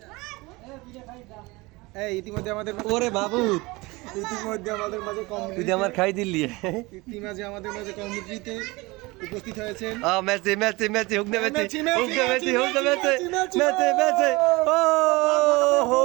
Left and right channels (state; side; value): quieter; left; 23.2 dB